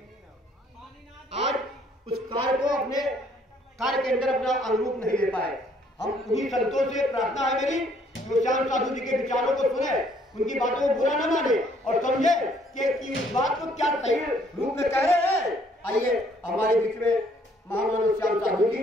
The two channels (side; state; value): both; normal; correlation 0.64